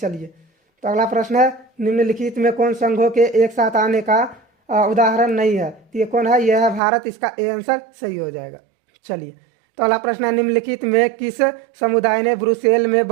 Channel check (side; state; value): left; drops out; at 6.8 s